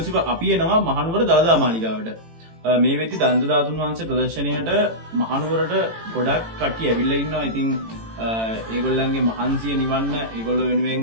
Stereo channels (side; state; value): left; late; 18 ms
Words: අපි එනවා මහනුවර දළදා මාලිගාවට. මේ වෙද්දි දන්ත ධාතුන් වහන්සේ ප්‍රදර්ශනයට මහනුවරට ගොඩක් කට්ටිය ඇවිල්ලා ඉන්නවා. ඉතින් ඒගොල්ලන්ගේ මහන්සිය නිවන්න ඒගොල්ලෝ වෙනුවෙන්